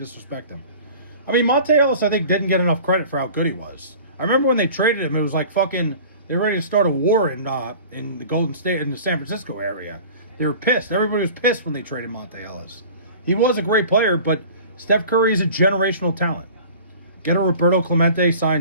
him. I mean, Monte Ellis, I think, didn't get enough credit for how good he was. I remember when they traded him, it was like fucking, they were ready to start a war in the Golden State, in the San Francisco area. They were pissed. Everybody was pissed when they traded Monte Ellis. He was a great player, but Steph Curry is a generational talent. Get a Roberto Clemente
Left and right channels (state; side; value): inverted; both; correlation -0.43